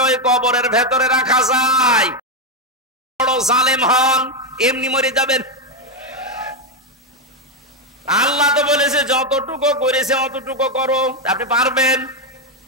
ওই কবরের ভেতরে রাখা যায়, বড় জালেম হন, এমনি মরে যাবেন। আল্লাহ তো বলেছে যতটুকু করেছে অতটুকু করো, আপনি পারবেন।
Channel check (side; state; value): both; normal; correlation 0.05